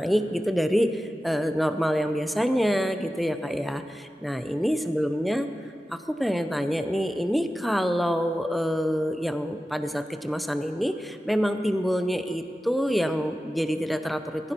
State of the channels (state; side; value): normal; both; correlation 0.93